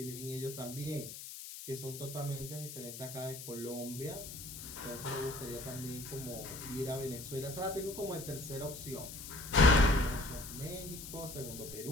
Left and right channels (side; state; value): left; noise; hiss, 10 dB below the sound